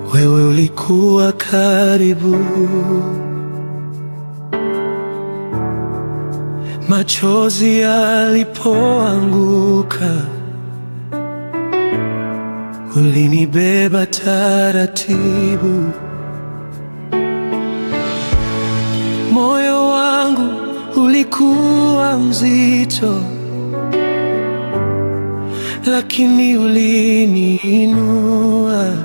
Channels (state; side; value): inverted; both; correlation -1.00